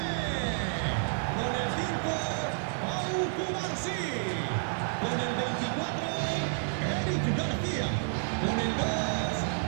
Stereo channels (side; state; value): left; silent; 58 dB below the other